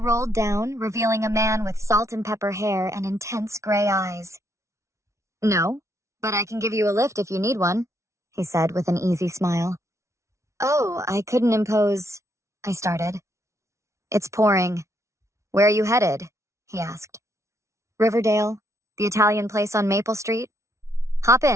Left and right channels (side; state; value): left; late; 0.14 ms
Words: down, revealing a man with salt and pepper hair and intense gray eyes. "No, but I can give you a lift if you need one," he said with an easy smile. "Oh, I couldn't impose," I started. "It's pouring. Where are you headed?" he asked. "Riverdale, the Italian place on Maple Street." "Hop